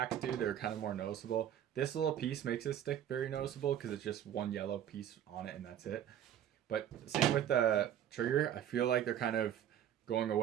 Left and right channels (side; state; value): left; quieter; 10.3 dB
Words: do. They're kind of more noticeable. This little piece makes this stick very noticeable because it's just one yellow piece on it and that's it. But same with the Trigger. I feel like they're kind of going